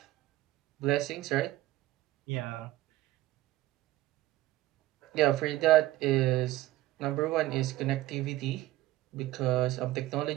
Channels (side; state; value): left; quieter; 16.4 dB